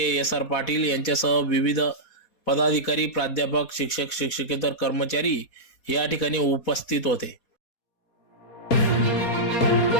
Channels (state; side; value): late; right; 4.2 ms